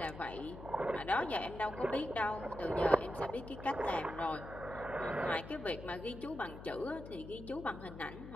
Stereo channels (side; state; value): left; noise; hum, 12 dB below the sound